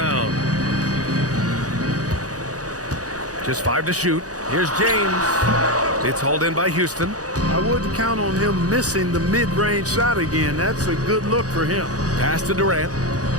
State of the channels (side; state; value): left; late; 0.67 ms